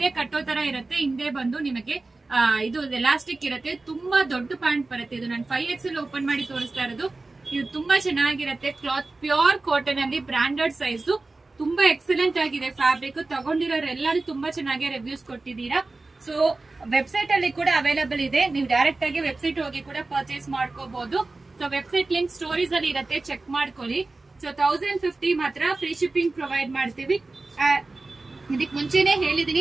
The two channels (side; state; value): left; quieter; 3.4 dB